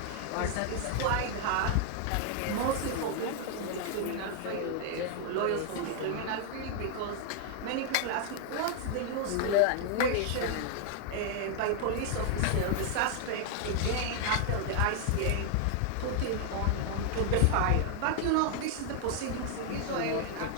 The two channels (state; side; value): different; both; correlation 0.00